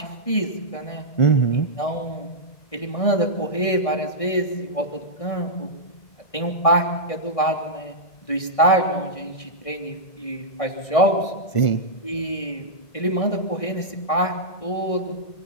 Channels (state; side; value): late; right; 1.6 ms